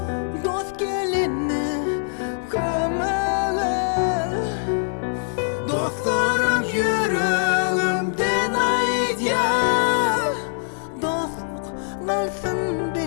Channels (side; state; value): right; silent; digital silence